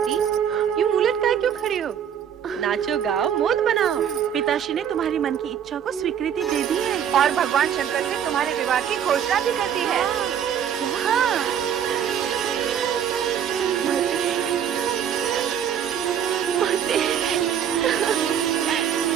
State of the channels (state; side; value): quieter; left; 8.8 dB